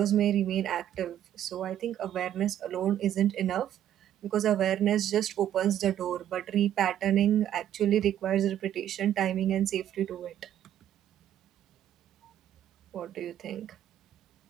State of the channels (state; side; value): quieter; left; 11.0 dB